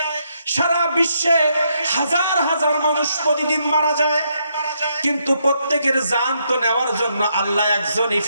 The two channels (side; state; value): both; inverted; correlation -0.76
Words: সারা বিশ্বে হাজার হাজার মানুষ প্রতিদিন মারা যায়। কিন্তু প্রত্যেকের জান তো নেওয়ার জন্য আল্লাহ একজনই